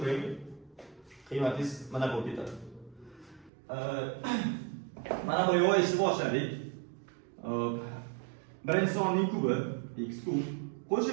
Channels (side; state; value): left; drops out; at 3.5 s